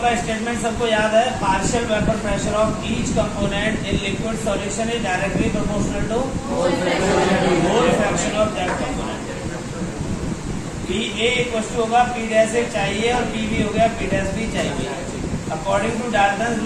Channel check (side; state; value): both; identical; correlation 1.00